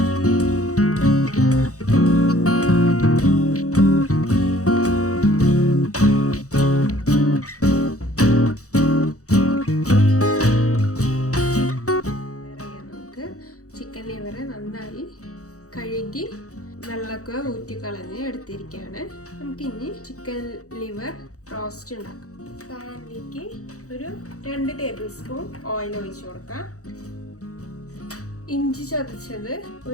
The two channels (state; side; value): late; right; 0.65 ms